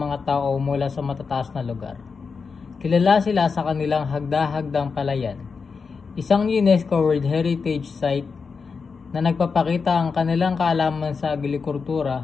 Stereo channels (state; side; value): quieter; right; 5.2 dB